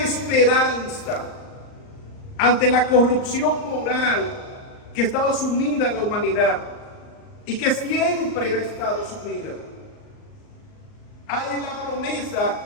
ante la corrupción moral que estaba sumida en la humanidad y que siempre ha estado sumida. Hay la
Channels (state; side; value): late; right; 38 ms